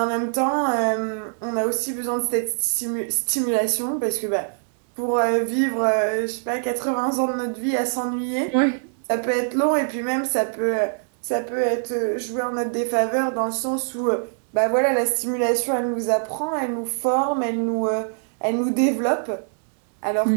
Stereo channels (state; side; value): silent; left; digital silence